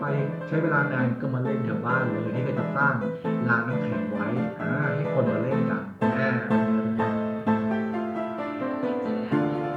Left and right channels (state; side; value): identical; both; correlation 1.00